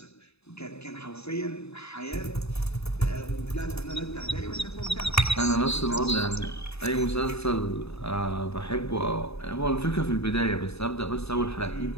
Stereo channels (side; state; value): right; late; 0.79 ms